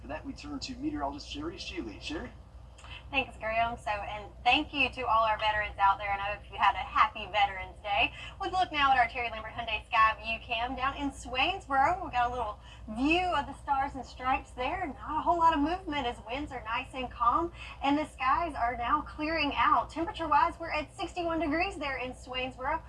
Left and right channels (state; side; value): identical; both; correlation 1.00